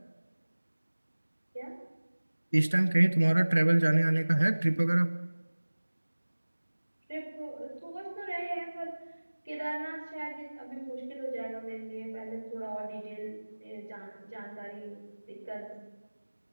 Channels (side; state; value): both; inverted; correlation -1.00